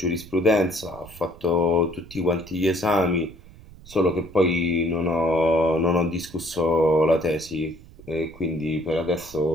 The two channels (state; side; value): noise; right; rumble, 20 dB below the sound